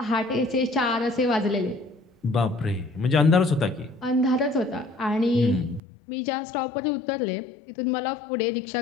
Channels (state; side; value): drops out; right; at 5.8 s